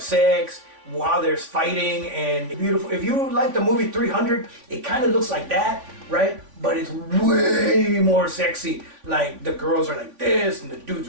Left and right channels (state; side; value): late; left; 3.5 ms